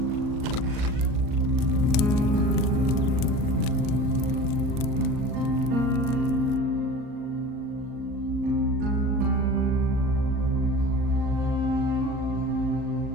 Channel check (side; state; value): left; late; 38 ms